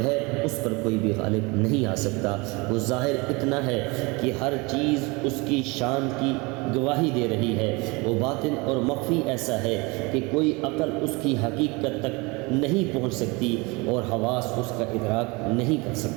ہے، اس پر کوئی بھی غالب نہیں آ سکتا۔ وہ ظاہر اتنا ہے کہ ہر چیز اس کی شان کی گواہی دے رہی ہے، وہ باطن اور مخفی ایسا ہے کہ کوئی عقل اس کی حقیقت تک نہیں پہنچ سکتی اور حواس اس کا ادراک نہیں کر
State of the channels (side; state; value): left; quieter; 26.3 dB